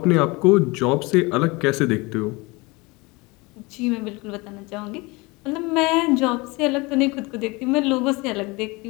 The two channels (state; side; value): quieter; right; 25.0 dB